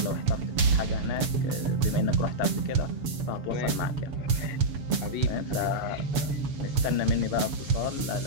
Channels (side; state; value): left; late; 7.1 ms